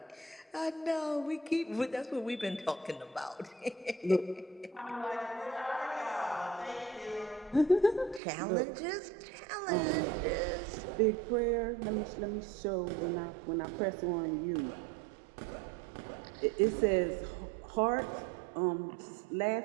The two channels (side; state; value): left; drops out; at 8.2 s